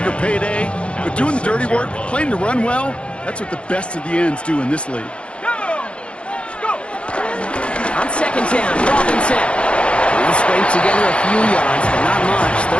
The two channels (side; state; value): right; late; 0.058 ms